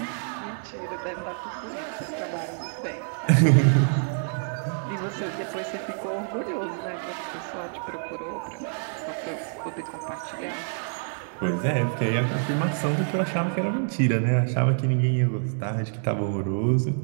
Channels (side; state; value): left; silent; 60 dB below the other